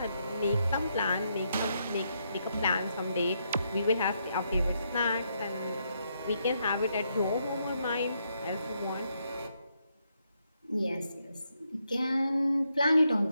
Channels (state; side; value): inverted; both; correlation -0.78